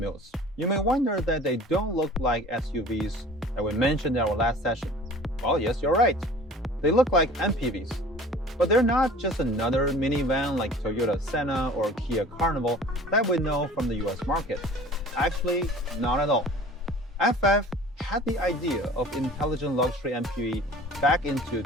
You may wonder that they don't look like SUVs that we mentioned in our last session. Well, yes, you're right. They look like MPVs. But they're not just another minivan like Toyota Senna or Kia Carnival that we know from the US market. Actually, not at all. FF had the idea of intelligent luxury MPV back into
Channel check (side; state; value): both; normal; correlation 0.45